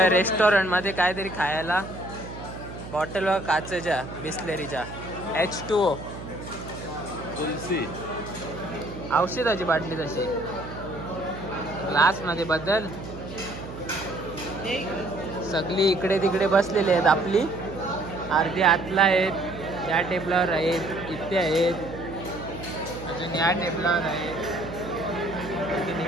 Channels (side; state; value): right; noise; hum, 11 dB below the sound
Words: रेस्टॉरंट मध्ये काहीतरी खायला. बॉटल व काचेच्या बिस्लेरीच्या H2O तुलसी औषधाची बाटली तशी ग्लास मध्ये बदल. सगळी इकडे तिकडे बसलेले आहेत. आपली अर्धी आतला आहेत, या टेबलावर आहेत, इथे आहेत, अजून या टेबलावर आहेत, अजून